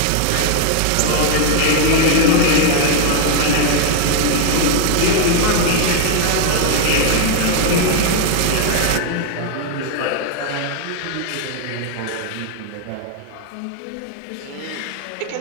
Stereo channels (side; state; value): both; different; correlation 0.00